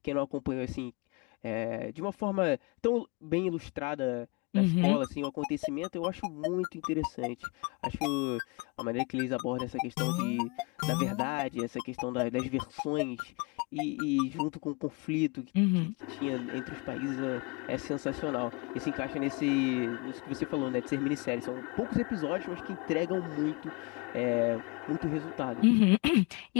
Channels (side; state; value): right; quieter; 28.9 dB